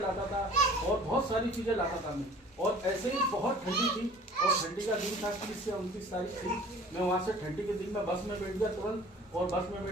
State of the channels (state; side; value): normal; both; correlation 0.48